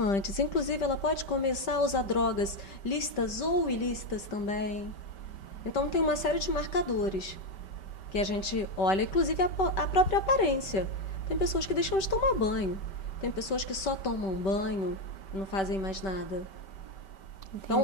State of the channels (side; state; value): right; late; 5.2 ms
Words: Inclusive, ela pode começar a usar drogas lícitas ou ilícitas também. Então, tem uma série de marcadores que a gente olha, inclusive a própria aparência. Tem pessoas que deixam de tomar banho, tem pessoas que só tomam banho e não fazem mais nada. Entendi.